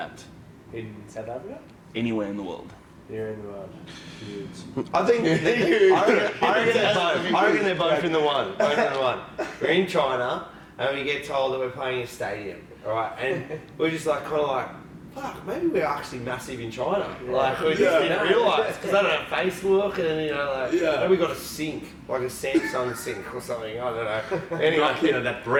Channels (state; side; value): identical; both; correlation 1.00